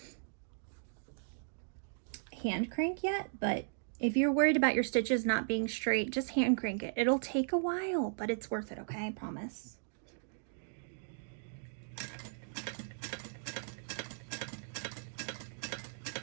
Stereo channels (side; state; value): left; silent; digital silence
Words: hand crank yet, but if you're worried about your stitches not being straight, just hand crank it. It'll take a while, but it's worth it, okay? I promise.